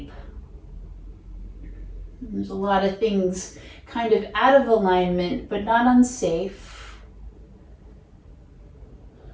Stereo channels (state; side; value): identical; both; correlation 1.00